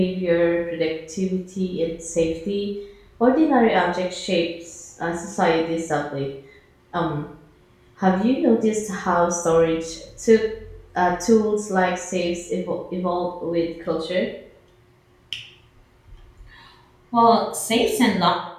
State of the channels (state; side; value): identical; both; correlation 1.00